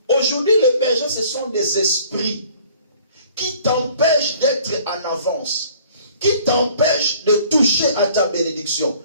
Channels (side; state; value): both; inverted; correlation -0.54